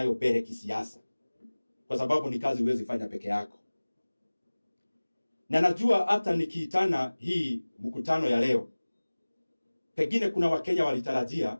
mbele kisiasa. Kwa sababu ni kazi huwezi fanya peke yako. Na najua hata nikiitana hii mkutano ya leo, pengine kuna Wakenya walitarajia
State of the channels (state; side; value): inverted; both; correlation -1.00